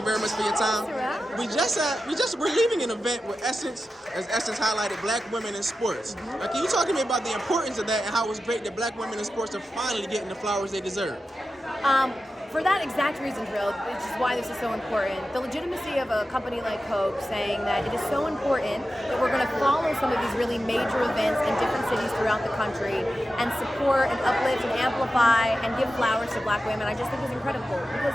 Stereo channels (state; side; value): normal; both; correlation 0.92